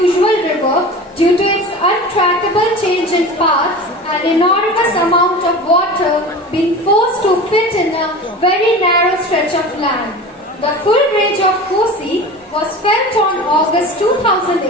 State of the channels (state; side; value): normal; both; correlation 0.34